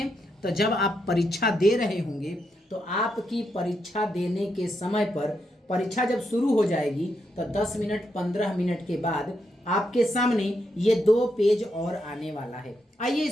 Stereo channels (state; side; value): normal; both; correlation 0.81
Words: तो जब आप परीक्षा दे रहे होंगे तो आपकी परीक्षा देने के समय पर, परीक्षा जब शुरू हो जाएगी तो 10 मिनट 15 मिनट के बाद आपके सामने ये 2 पेज और आने वाला है। आइए